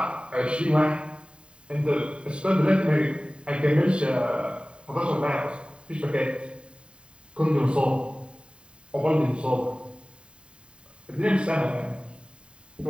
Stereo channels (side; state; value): left; late; 0.053 ms